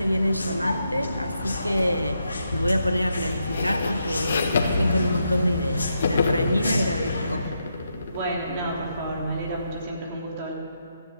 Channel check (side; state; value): both; inverted; correlation -0.81